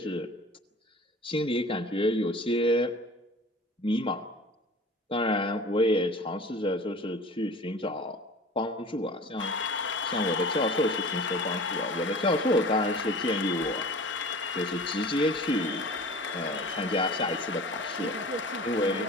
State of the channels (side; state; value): both; normal; correlation 0.41